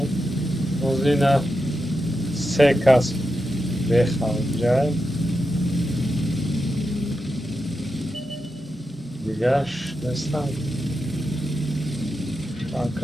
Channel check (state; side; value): normal; both; correlation 0.88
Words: روز اینا 3 کس بخوام دیگهش نیستم